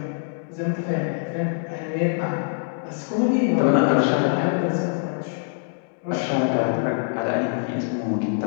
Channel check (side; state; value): right; silent; digital silence